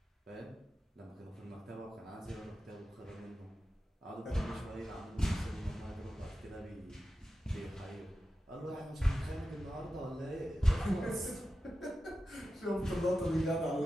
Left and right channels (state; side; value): normal; both; correlation 0.92